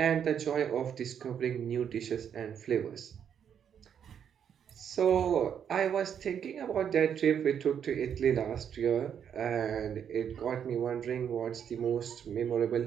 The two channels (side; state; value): left; quieter; 8.3 dB